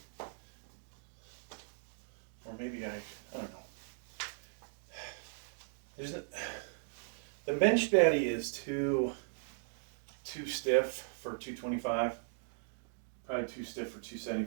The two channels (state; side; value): silent; left; digital silence